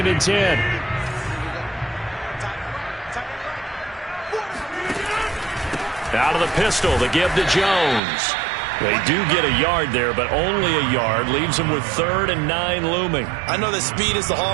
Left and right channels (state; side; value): drops out; left; at 8.0 s